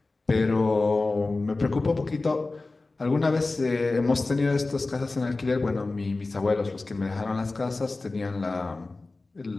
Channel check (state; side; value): quieter; right; 3.4 dB